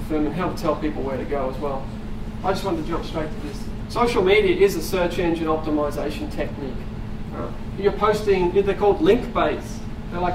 them and how to tell people where to go as well. I just wanted to jump straight to this. Social media is a search engine optimization technique. You're posting, they're called link-based. They're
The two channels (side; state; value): both; identical; correlation 1.00